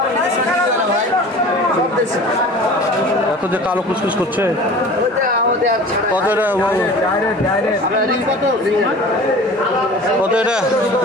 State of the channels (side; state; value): both; normal; correlation 0.41